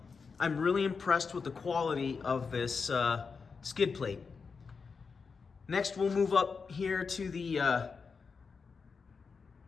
I'm really impressed with the quality of this skid plate. Next, we'll move up here to the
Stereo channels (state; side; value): quieter; right; 5.2 dB